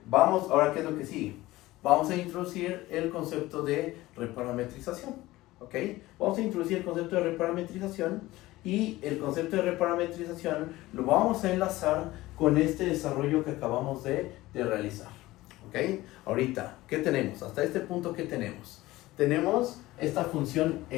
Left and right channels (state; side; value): quieter; right; 18.0 dB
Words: vamos, ahora ¿qué es lo que sigue? Vamos a introducir el concepto de reparametrización, ¿ok? Vamos a introducir el concepto de reparametrización y el concepto de reparametrización lo vamos a enlazar con este desarrollo que acabamos de realizar, ¿ok? Ahorita, ¿qué tenemos? Hasta este punto, ¿qué tenemos? Tenemos esta función